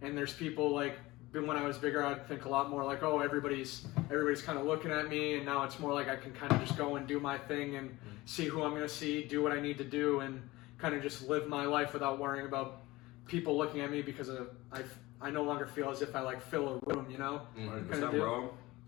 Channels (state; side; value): quieter; right; 19.9 dB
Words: and there's people like. When I was bigger, I'd think a lot more like, oh, everybody's kind of looking at me, and now it's more like I can kind of just go and do my thing and see who I'm gonna see, do what I need to do, and kind of just live my life without worrying about people looking at me because I no longer feel as if I like fill a room, you know. 100%, bro.